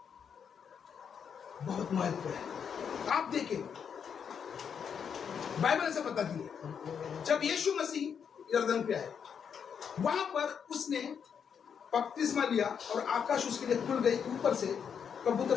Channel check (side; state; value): right; quieter; 7.3 dB